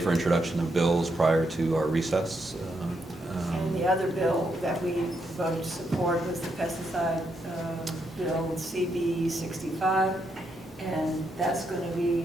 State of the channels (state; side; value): normal; both; correlation 0.79